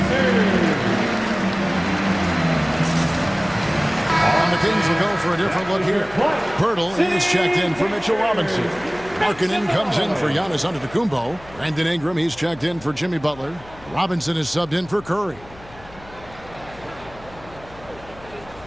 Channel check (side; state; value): left; noise; hum, 21 dB below the sound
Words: And the Kings will go for a different look here. Pirtle is checked in for Mitchell Robinson. Markkanen comes in for Giannis Antetokounmpo. Brandon Ingram, he's checked in for Jimmy Butler. Robinson is subbed in for Curry.